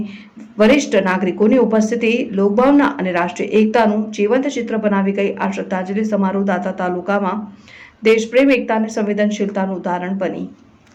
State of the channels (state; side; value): identical; both; correlation 1.00